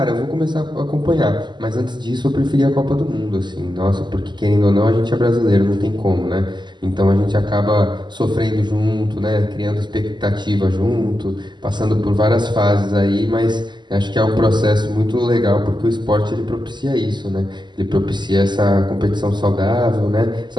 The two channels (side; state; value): left; late; 0.21 ms